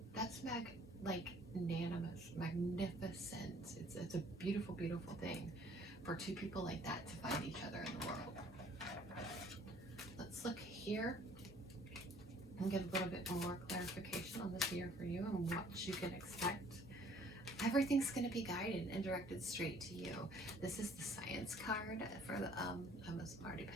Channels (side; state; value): both; normal; correlation 0.57